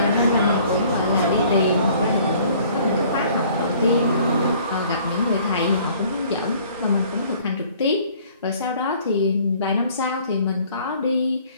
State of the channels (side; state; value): both; inverted; correlation -0.56